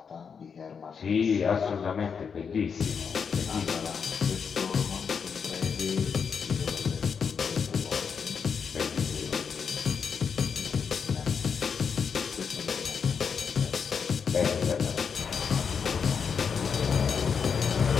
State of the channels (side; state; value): right; quieter; 6.3 dB